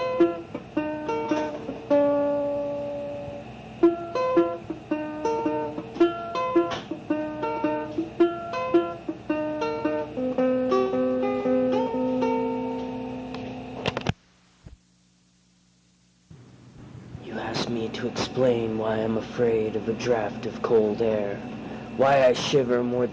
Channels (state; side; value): identical; both; correlation 1.00